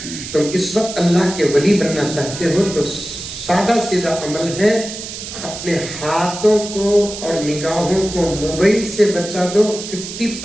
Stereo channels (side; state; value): right; noise; hiss, 9 dB below the sound